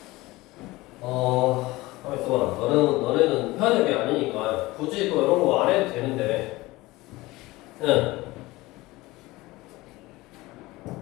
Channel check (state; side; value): quieter; right; 20.0 dB